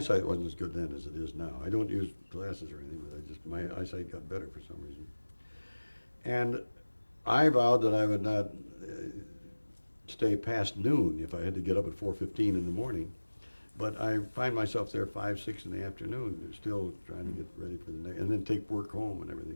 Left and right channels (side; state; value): both; inverted; correlation -1.00